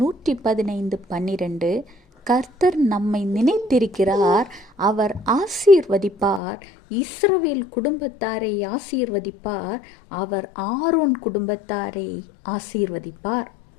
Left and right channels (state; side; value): drops out; right; at 6.4 s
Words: 115:12, கர்த்தர் நம்மை நினைத்திருக்கிறார், அவர் ஆசீர்வதிப்பார், இஸ்ரவேல் குடும்பத்தாரை ஆசீர்வதிப்பார், அவர் ஆரோன் குடும்பத்தாரை ஆசீர்வதிப்பார்.